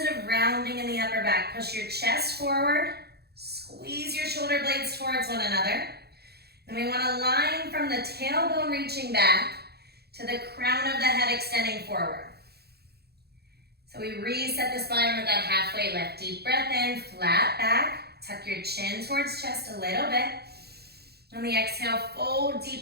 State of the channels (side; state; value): left; late; 0.47 ms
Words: of rounding in the upper back. Push your chest forward, squeeze your shoulder blades towards one another. And we want to line from the tailbone reaching back to the crown of the head extending forward. So we reset the spine with that halfway lift. Deep breath in, flat back. Tuck your chin towards chest a little bit. On the exhale, fold